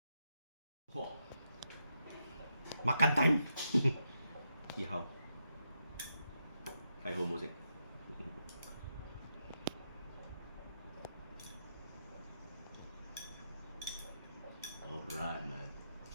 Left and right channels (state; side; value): inverted; both; correlation -0.83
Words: Makan time. See how? Kai ho music. Alright, man.